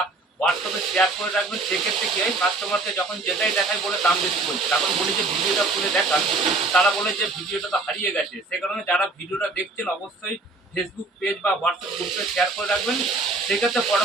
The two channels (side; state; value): left; quieter; 3.3 dB